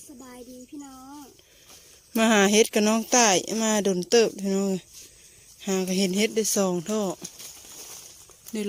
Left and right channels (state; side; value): identical; both; correlation 1.00